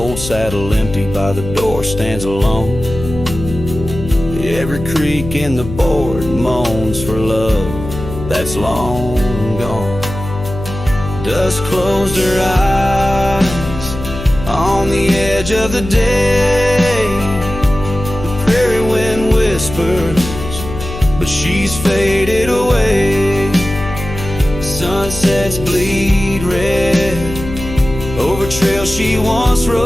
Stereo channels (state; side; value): noise; left; hum, 9 dB below the sound